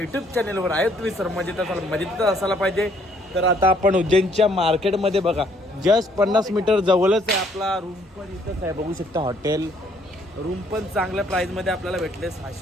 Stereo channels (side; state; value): both; normal; correlation 0.65